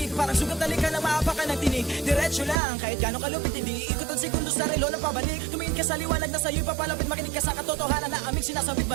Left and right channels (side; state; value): left; drops out; at 2.6 s